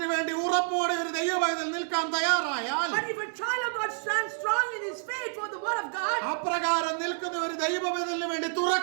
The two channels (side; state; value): left; silent; 59 dB below the other